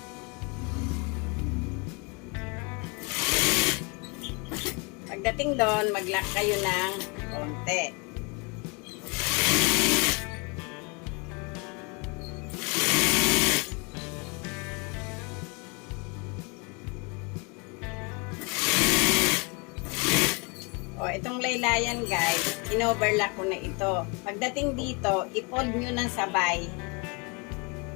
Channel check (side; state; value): right; quieter; 31.5 dB